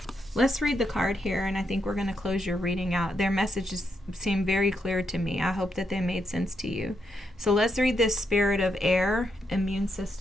Let's read the card here, and I think we're going to close your reading out. Their messages seem very clear to me. I hope that they made sense to you. So let's read this Spirit of Air Immune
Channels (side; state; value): both; normal; correlation 0.80